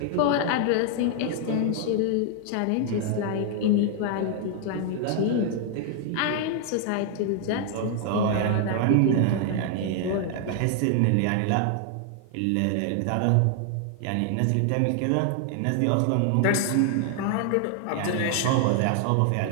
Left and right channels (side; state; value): both; different; correlation 0.00